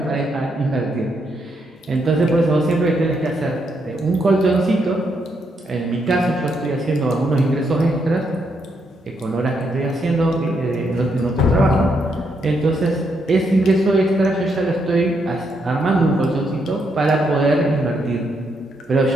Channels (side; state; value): both; normal; correlation 0.78